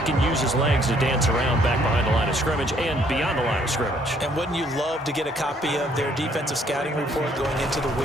can use his legs to dance around back behind the line of scrimmage and beyond the line of scrimmage. And wouldn't you love to get a copy of their defensive scouting report going into the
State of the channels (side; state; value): both; normal; correlation 0.65